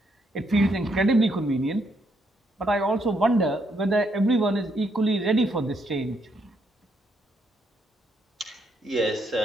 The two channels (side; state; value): both; normal; correlation 0.75